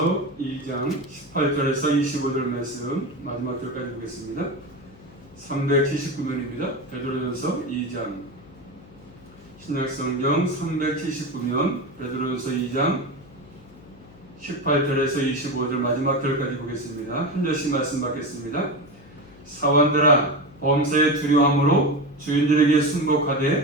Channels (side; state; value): left; noise; hum, 23 dB below the sound